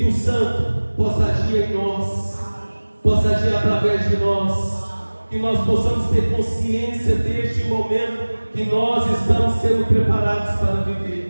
Santo possa agir em nós, possa agir através de nós, que nós possamos ter consciência deste momento que nós estamos sendo preparados para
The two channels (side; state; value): both; inverted; correlation -1.00